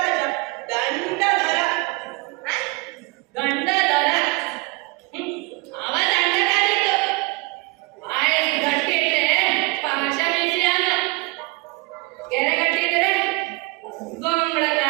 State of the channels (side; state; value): left; quieter; 25.3 dB